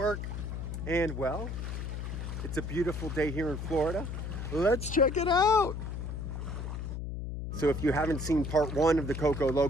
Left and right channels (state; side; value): noise; left; hum, 5 dB below the sound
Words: and well, it's a beautiful day here in Florida. Let's check it out. So if you haven't seen part 1 of the Coco